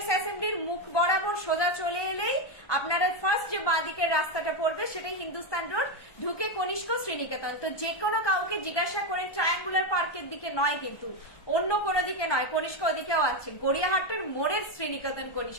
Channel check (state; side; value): late; right; 1.2 ms